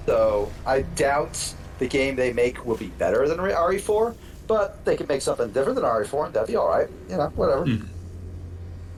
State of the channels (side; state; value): both; identical; correlation 1.00